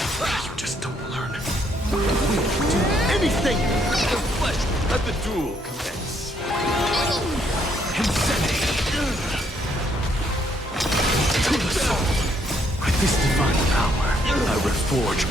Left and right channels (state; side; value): normal; both; correlation 0.70